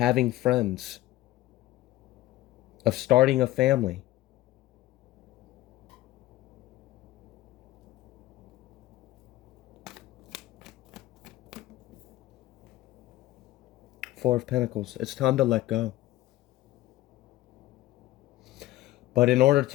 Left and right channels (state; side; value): quieter; right; 15.8 dB